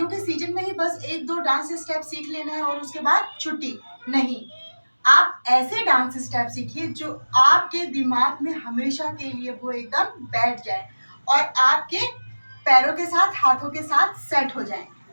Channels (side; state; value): both; inverted; correlation -1.00